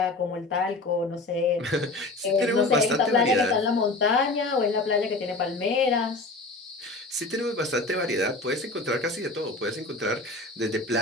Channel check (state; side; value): quieter; right; 3.0 dB